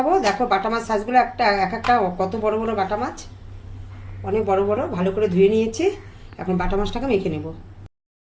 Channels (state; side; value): identical; both; correlation 1.00